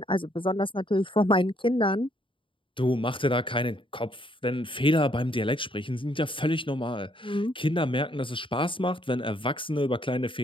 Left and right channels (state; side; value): late; right; 0.25 ms